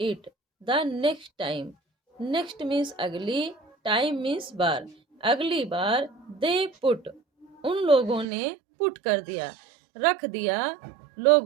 it, the next time, next means अगली, टाइम मीन्स बार, अगली बार, दे पुट उन लोगों ने, पुट कर दिया, रख दिया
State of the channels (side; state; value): left; drops out; at 8.2 s